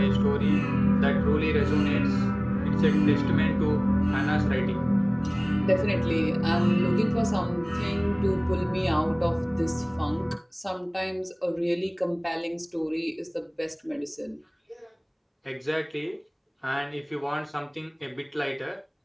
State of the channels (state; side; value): identical; both; correlation 1.00